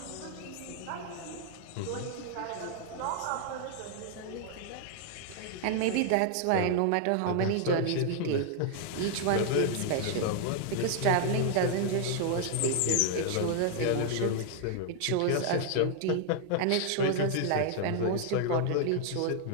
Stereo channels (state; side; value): different; both; correlation 0.00